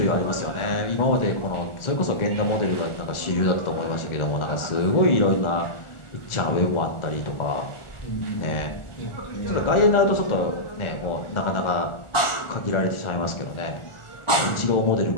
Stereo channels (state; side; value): late; right; 1.4 ms